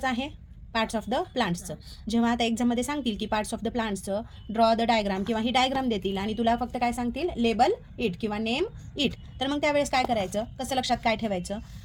आहे? पार्ट्स ऑफ द प्लांट्सचं. जेव्हा आता एक्झाममध्ये सांगतील की पार्ट्स ऑफ द प्लांट्सचं ड्रॉ द डायग्राम किंवा ही डायग्राम देतील आणि तुला फक्त काय सांगतील, लेबल इट किंवा नेम इट, तर मग त्यावेळेस काय करायचं, कसं लक्षात काय ठेवायचं?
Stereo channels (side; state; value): both; identical; correlation 1.00